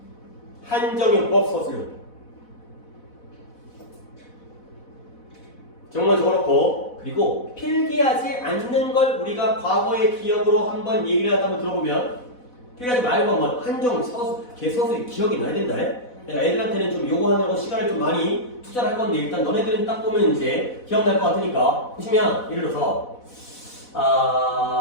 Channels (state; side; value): late; right; 4.1 ms